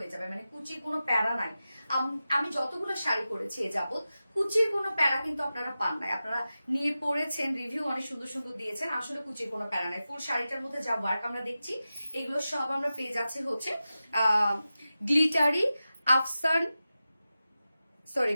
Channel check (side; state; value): both; inverted; correlation -0.93